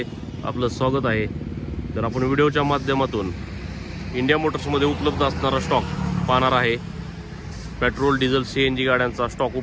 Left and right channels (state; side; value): identical; both; correlation 1.00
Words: आपलं स्वागत आहे। तर आपण व्हिडिओच्या माध्यमातून इंडिया मोटर्समध्ये उपलब्ध असणारा स्टॉक पाहणार आहे। पेट्रोल, डिझेल, सीएनजी गाड्यांचा स्टॉक